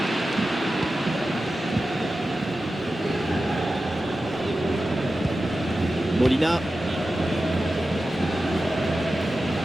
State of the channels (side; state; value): both; normal; correlation 0.93